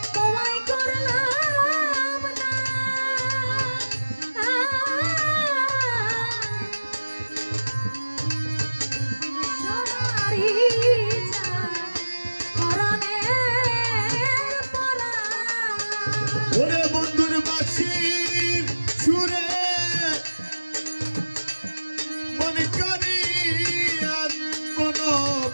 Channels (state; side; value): inverted; both; correlation -1.00